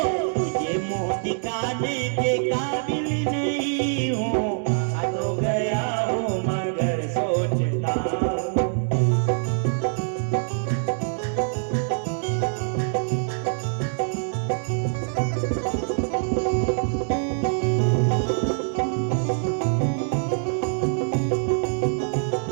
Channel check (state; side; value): silent; left; digital silence